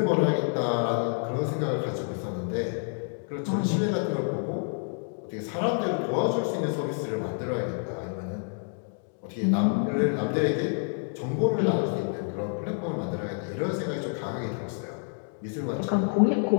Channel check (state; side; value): silent; right; 59 dB below the other